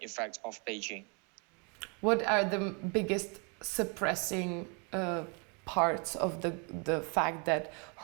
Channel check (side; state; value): left; quieter; 34.6 dB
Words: effects of Beijing. What are the biggest suppressing parts of the fact that